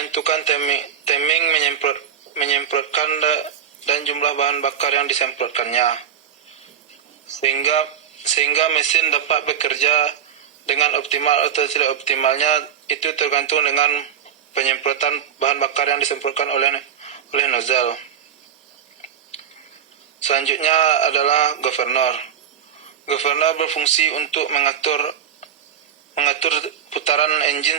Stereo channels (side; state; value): left; quieter; 8.4 dB